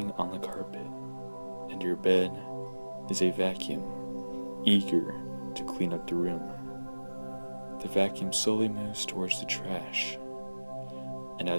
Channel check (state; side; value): inverted; both; correlation -1.00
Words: on the carpet, and your bed is a vacuum, eager to clean up the room. The vacuum slowly moves towards the trash, and